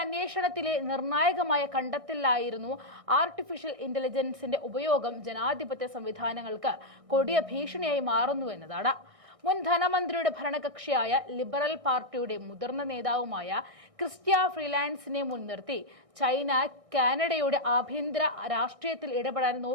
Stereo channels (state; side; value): late; left; 1.6 ms